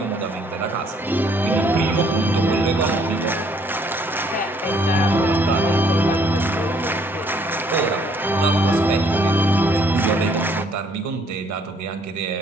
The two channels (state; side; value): normal; both; correlation 0.65